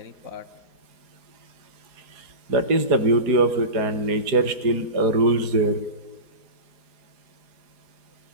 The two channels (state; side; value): late; left; 4.8 ms